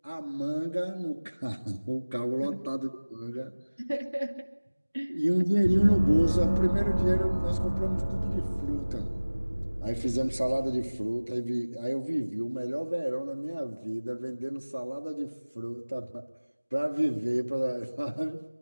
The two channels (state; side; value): inverted; both; correlation -1.00